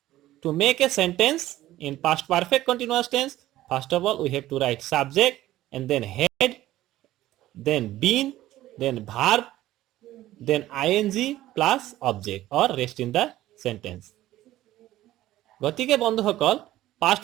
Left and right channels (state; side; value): quieter; left; 14.9 dB